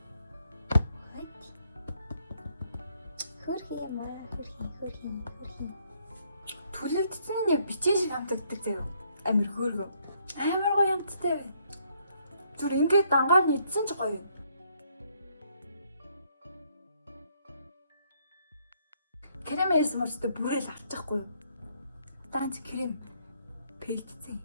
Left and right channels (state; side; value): inverted; both; correlation -0.70